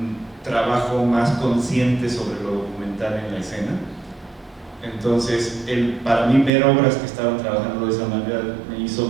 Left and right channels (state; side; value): drops out; left; at 6.5 s